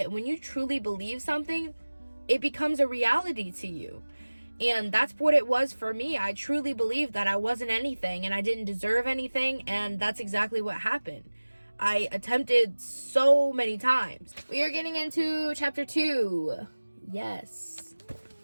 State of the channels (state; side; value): inverted; both; correlation -1.00